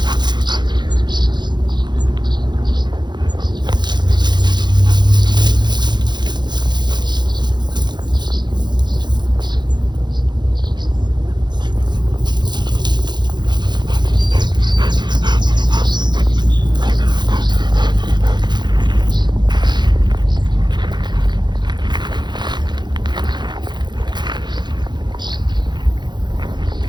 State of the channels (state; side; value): late; left; 0.21 ms